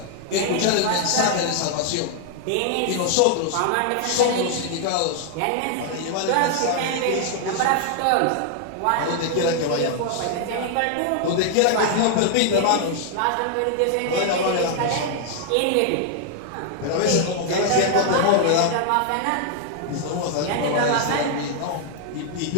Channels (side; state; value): both; different; correlation 0.00